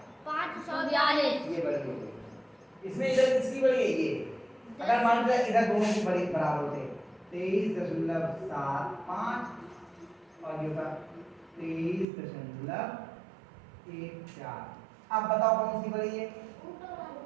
542। ये बड़ी हो गई। इसमें इधर किसकी बड़ी है? ये। अगर मान लो इधर दोनों की बड़ी बराबर होते 23.75 और ये होता 23.14। अब बताओ कौन सी बड़ी है?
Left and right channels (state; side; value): drops out; left; at 12.1 s